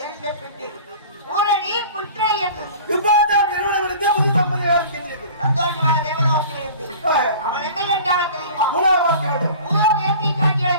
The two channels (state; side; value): inverted; both; correlation -0.42